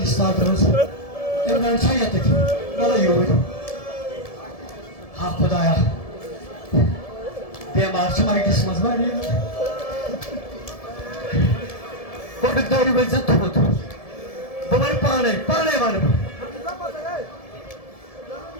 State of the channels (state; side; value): late; right; 1.7 ms